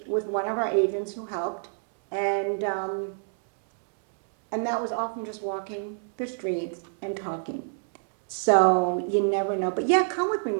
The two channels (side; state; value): left; silent; 60 dB below the other